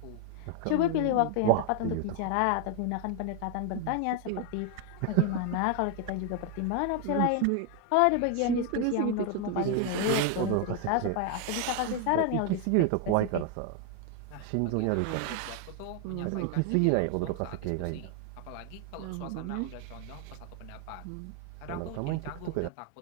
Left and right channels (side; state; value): both; different; correlation 0.01